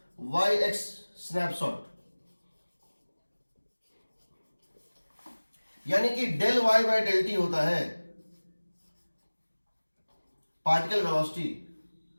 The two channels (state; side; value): inverted; both; correlation -1.00